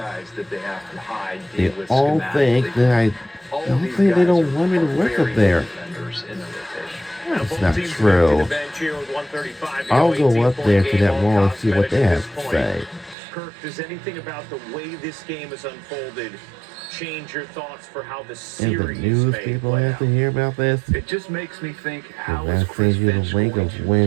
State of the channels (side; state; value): left; drops out; at 13.2 s